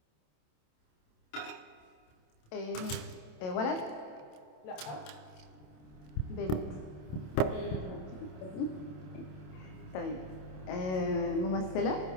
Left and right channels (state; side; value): late; right; 27 ms